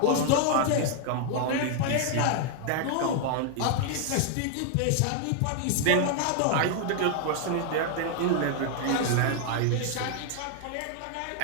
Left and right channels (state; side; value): different; both; correlation 0.00